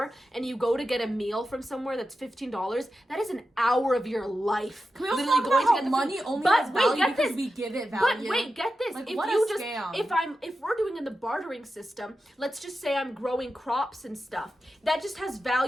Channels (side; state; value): both; normal; correlation 0.91